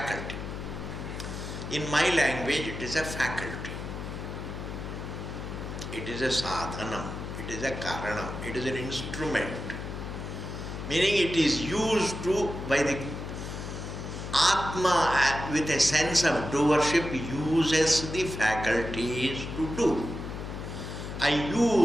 In my language, it is a faculty. It is a sadhanam. It is a karanam. It is an instrument. Meaning it is used by the Atma with a sense of doership uses the faculties to do. I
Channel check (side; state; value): left; noise; hum, 7 dB below the sound